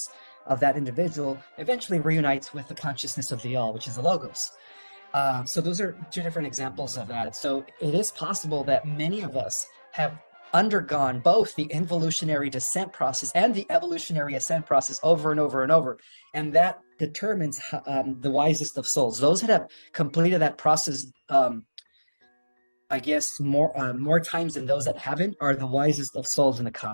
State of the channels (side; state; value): both; inverted; correlation -1.00